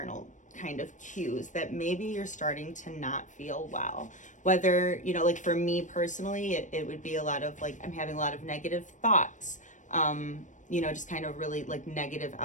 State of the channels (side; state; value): right; late; 0.36 ms